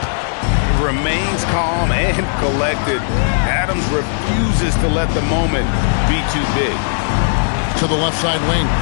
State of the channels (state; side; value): silent; right; digital silence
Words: Remains calm and collected. Adams refuses to let the moment be too big. To the left side wing.